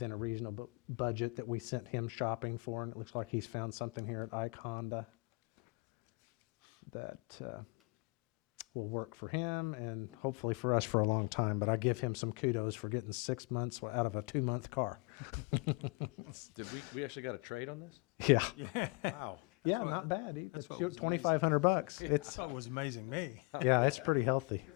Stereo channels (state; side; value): quieter; right; 27.7 dB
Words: a reasonable budget that we sent him shopping for. And it looks like he's found something here at Ike Honda that will work for him and hopefully for us for a long time. But I give him some kudos for getting 6 months out of a 2-month car. Did we actually got a trade on this? Yeah. Wow. Yeah, not bad. That's what was $2,500. It's thought it was amazing me. yeah, it's pretty healthy.